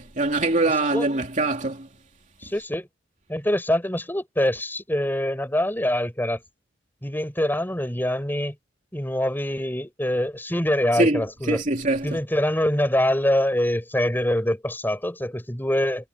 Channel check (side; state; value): both; normal; correlation 0.73